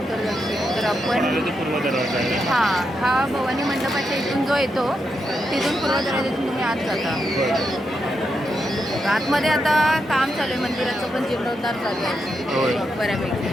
दक्षिण. तर आपण पूर्व दरवाजा आहे. हा भवानी मंडपाच्या इथून जो येतो तिथून पूर्व दरवाजातून तुम्ही आत जाता. आतमध्ये आता काम चालू आहे मंदिराचं, पण जीर्णोद्धार चालू आहे बऱ्यापैकी.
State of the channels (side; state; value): both; normal; correlation 0.84